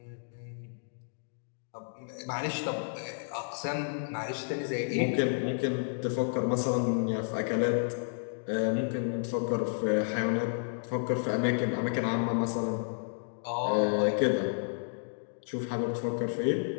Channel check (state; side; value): silent; right; digital silence